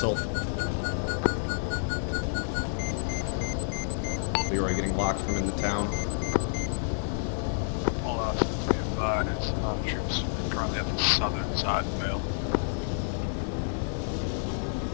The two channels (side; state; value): right; silent; digital silence